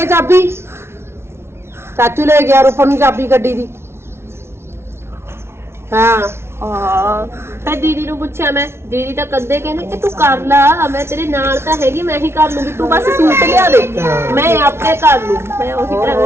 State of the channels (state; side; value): late; left; 0.12 ms